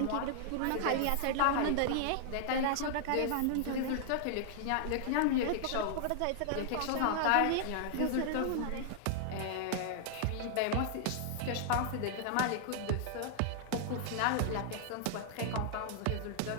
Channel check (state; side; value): different; both; correlation -0.01